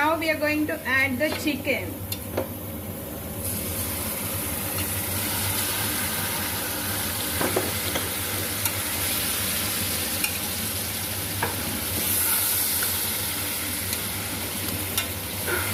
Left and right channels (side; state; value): both; identical; correlation 1.00